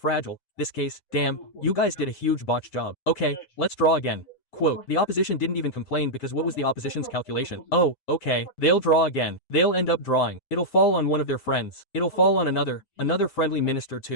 This case, damn, you guys did a huge botch job. Okay, let's draw again. Quote, the opposition didn't even complain because what was the opposition's calculation? Oh, okay, they'll draw again. They'll end up drawing. It'll fall on one of their friends. It'll fall on another friendly minister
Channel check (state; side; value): late; right; 7.6 ms